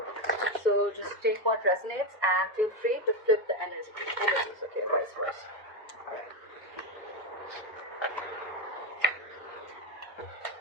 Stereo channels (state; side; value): normal; both; correlation 0.10